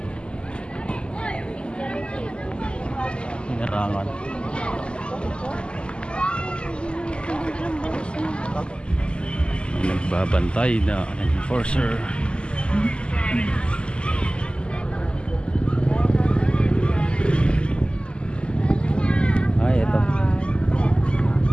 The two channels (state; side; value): late; right; 0.051 ms